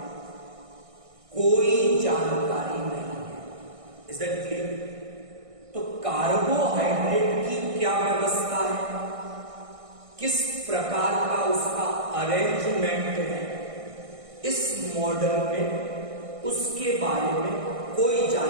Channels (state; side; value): late; left; 1.6 ms